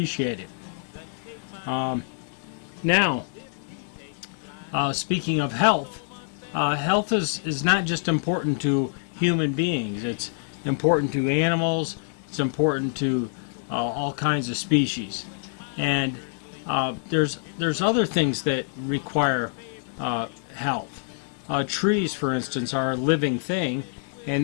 it. Now, speaking of health, health is not just important to human beings. It's important to animals. It's important to all kinds of species. And there's other things that require health. Trees, for instance, are a living thing, and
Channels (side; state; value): right; silent; digital silence